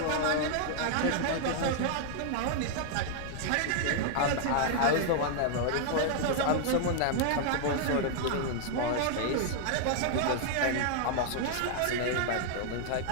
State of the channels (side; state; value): both; different; correlation 0.00